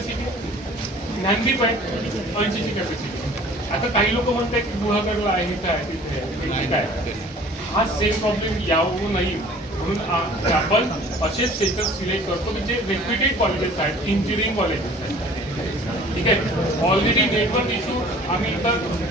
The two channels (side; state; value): both; normal; correlation 0.49